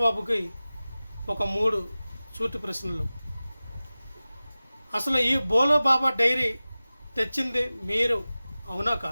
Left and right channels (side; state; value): both; inverted; correlation -0.97